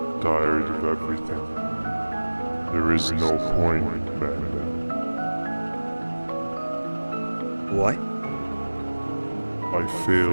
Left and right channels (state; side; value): inverted; both; correlation -1.00